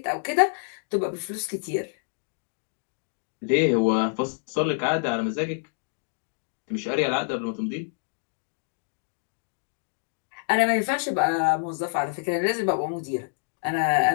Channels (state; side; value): silent; right; digital silence